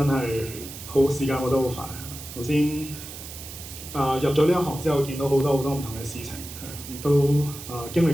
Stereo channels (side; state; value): right; noise; hiss, 12 dB below the sound